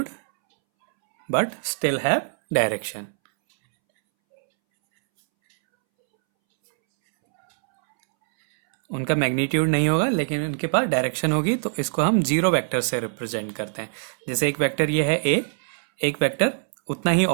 but still have direction. उनका मैग्नीट्यूड नहीं होगा लेकिन उनके पास डायरेक्शन होगी, तो इसको हम जीरो वेक्टर से रिप्रेजेंट करते हैं। जैसे एक वेक्टर ये है ए, एक वेक्टर उतना ही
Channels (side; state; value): left; silent; 63 dB below the other